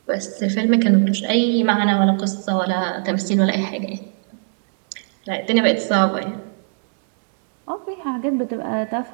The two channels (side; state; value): left; silent; 63 dB below the other